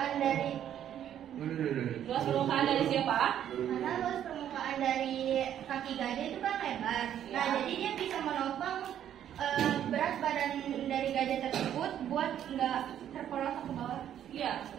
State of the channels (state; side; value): quieter; left; 10.4 dB